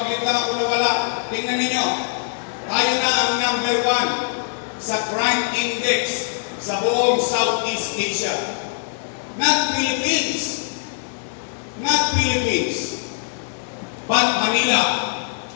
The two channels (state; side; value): silent; right; digital silence